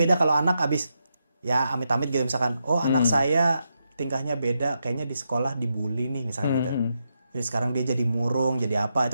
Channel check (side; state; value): both; inverted; correlation -0.84